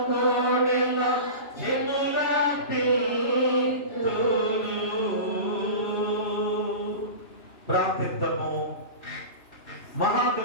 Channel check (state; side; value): late; right; 2.9 ms